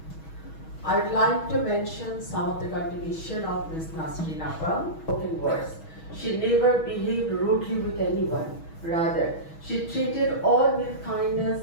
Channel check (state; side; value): late; right; 6.2 ms